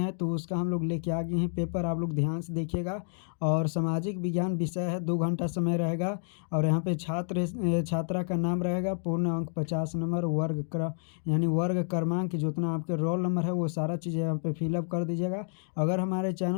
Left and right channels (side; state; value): right; silent; 58 dB below the other